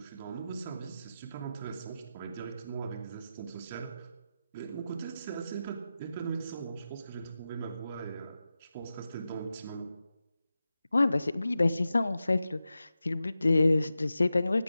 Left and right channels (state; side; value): inverted; both; correlation -0.92